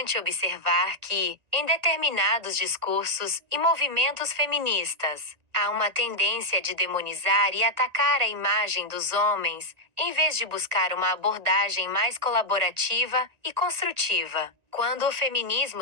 observar que, em determinados discursos e movimentos feministas, há uma tendência de demonizar e atacar a imagem dos homens, em vez de buscar uma abordagem mais colaborativa e construtiva. Quando o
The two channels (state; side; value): late; left; 1.9 ms